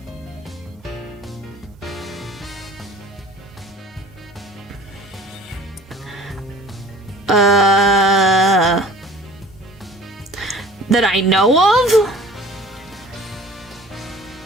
That I know of?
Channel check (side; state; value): both; normal; correlation 0.47